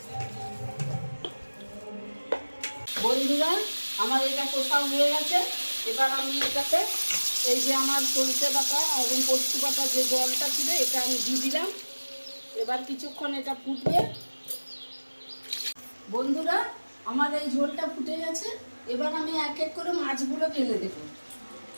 বন্ধুরা, আমার এটা কোথাও হয়ে গেছে। এবার আমি এটাতে এই যে আমার সরষে বাটা এবং পোস্ত বাটা যে জলটা ছিল এটা আমি দিয়ে দিলাম। এবার কিছুক্ষণ এটা ফুটবে। বন্ধুরা, আমার এই ঝোলটা ফুটে গেছে। এবার আমি এক এক করে মাছগুলো ফেলে দেব।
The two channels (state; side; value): inverted; both; correlation -1.00